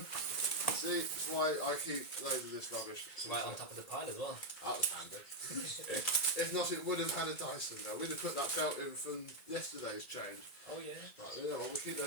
See, that's why I keep loads of this rubbish. Right on top of the pile as well. That was handy. If not, it would have had a Dyson though. We'd have put that belt in from yesterday's change. Oh yeah. Right, yeah, well, we'll keep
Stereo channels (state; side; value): late; right; 2.0 ms